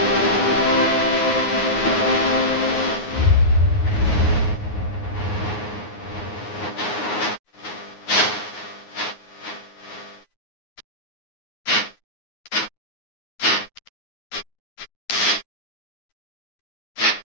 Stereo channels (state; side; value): late; right; 9.5 ms